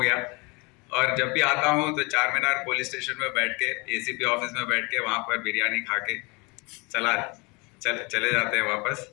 और जब भी आता हूँ तो चार मीनार पुलिस स्टेशन में बैठ के, ACP ऑफिस में बैठ के, वहाँ पर बिरयानी खा के चले जाते हैं वापस।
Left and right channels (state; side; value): quieter; right; 28.3 dB